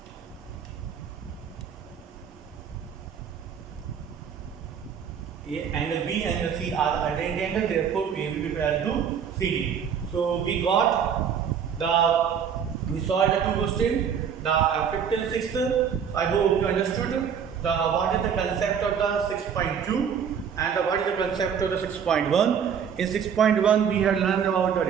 Angle B and angle C are alternate angles, therefore AB will be parallel to CD. So we solved the two questions, the 5th and 6th. I hope you understood what is the concept of the 6.2 and what is the concept of the 6.1. In 6.1 we have learned about the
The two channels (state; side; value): quieter; left; 7.6 dB